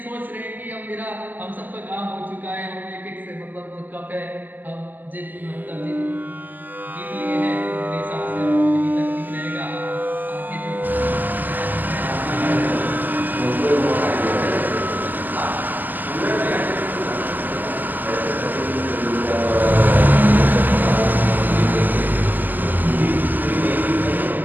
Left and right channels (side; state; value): left; late; 0.085 ms